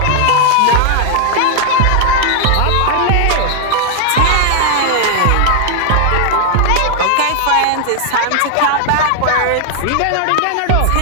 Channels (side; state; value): both; different; correlation 0.00